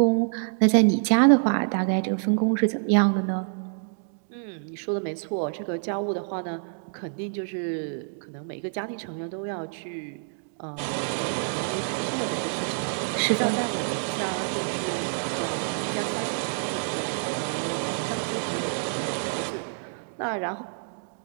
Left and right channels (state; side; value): silent; left; digital silence